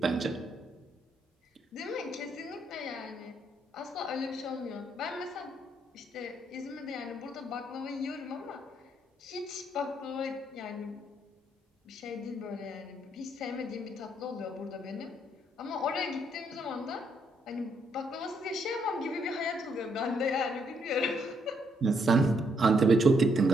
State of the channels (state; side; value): normal; both; correlation 0.73